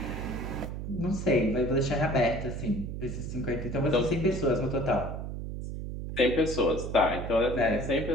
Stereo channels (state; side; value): noise; right; hum, 6 dB below the sound